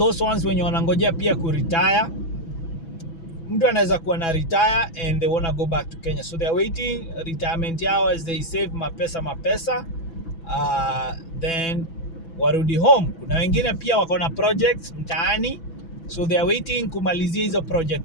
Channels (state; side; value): late; right; 6.0 ms